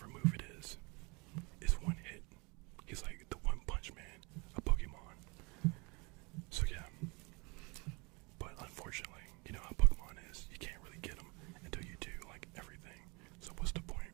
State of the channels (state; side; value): quieter; left; 28.6 dB